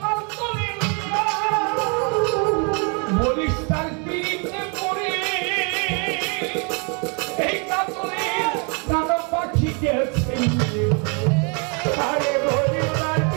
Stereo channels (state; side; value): quieter; left; 35.5 dB